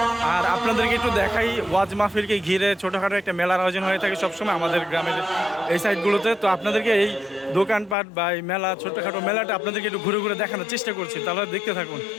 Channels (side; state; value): right; drops out; at 8.0 s